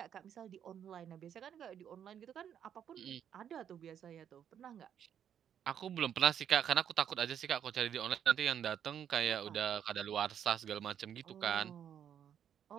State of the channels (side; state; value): left; quieter; 9.1 dB